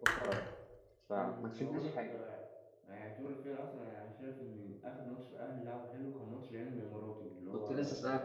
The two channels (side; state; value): both; identical; correlation 1.00